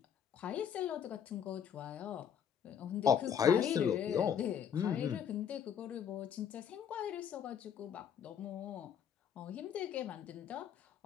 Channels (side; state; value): right; quieter; 8.2 dB